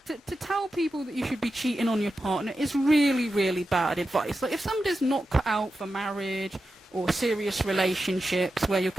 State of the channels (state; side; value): normal; both; correlation 0.91